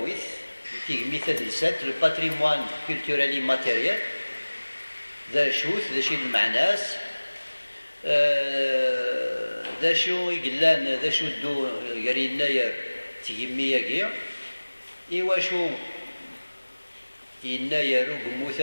تهمي تدرسات لو باتريموان كولتورالي ماتيريال ذا شوث ذا شي المعناس ذا شو يقلان ذا شو دو قرينا تهمي ياكي إيوا شو يناير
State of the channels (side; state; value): both; inverted; correlation -1.00